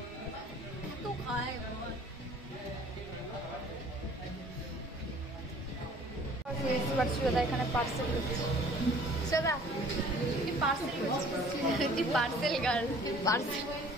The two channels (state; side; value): normal; both; correlation 0.52